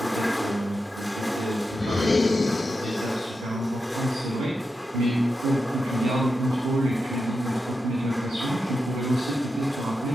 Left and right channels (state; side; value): normal; both; correlation 0.88